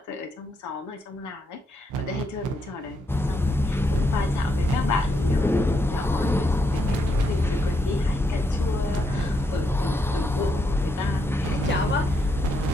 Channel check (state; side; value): normal; both; correlation 0.78